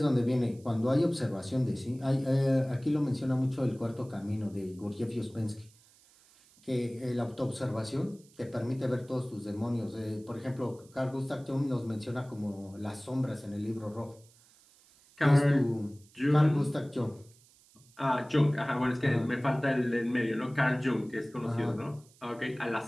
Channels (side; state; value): right; noise; hiss, 28 dB below the sound